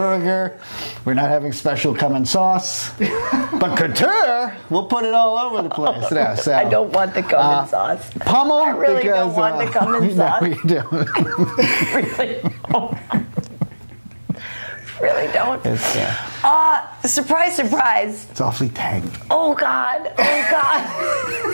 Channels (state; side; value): inverted; both; correlation -1.00